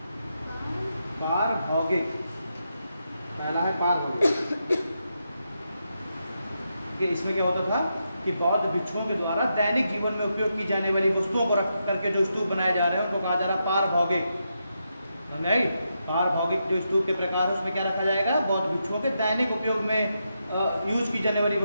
पहला है पारभौगिक। इसमें क्या होता था कि बौद्ध भिक्षुओं के द्वारा दैनिक जीवन में उपयोग की जाने वाली वस्तुओं को रख करके जो स्तूप बनाए जा रहे हैं उनको कहा जा रहा है पारभौगिक। पारभौगिक जो स्तूप के प्रकार है उसमें क्या रखा जाएगा? बौद्ध भिक्षुओं के दैनिक उपयोग में यूज की जाने वाली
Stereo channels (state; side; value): inverted; both; correlation -0.84